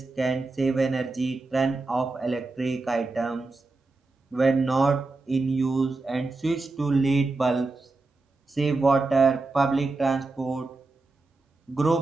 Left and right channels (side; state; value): left; quieter; 3.4 dB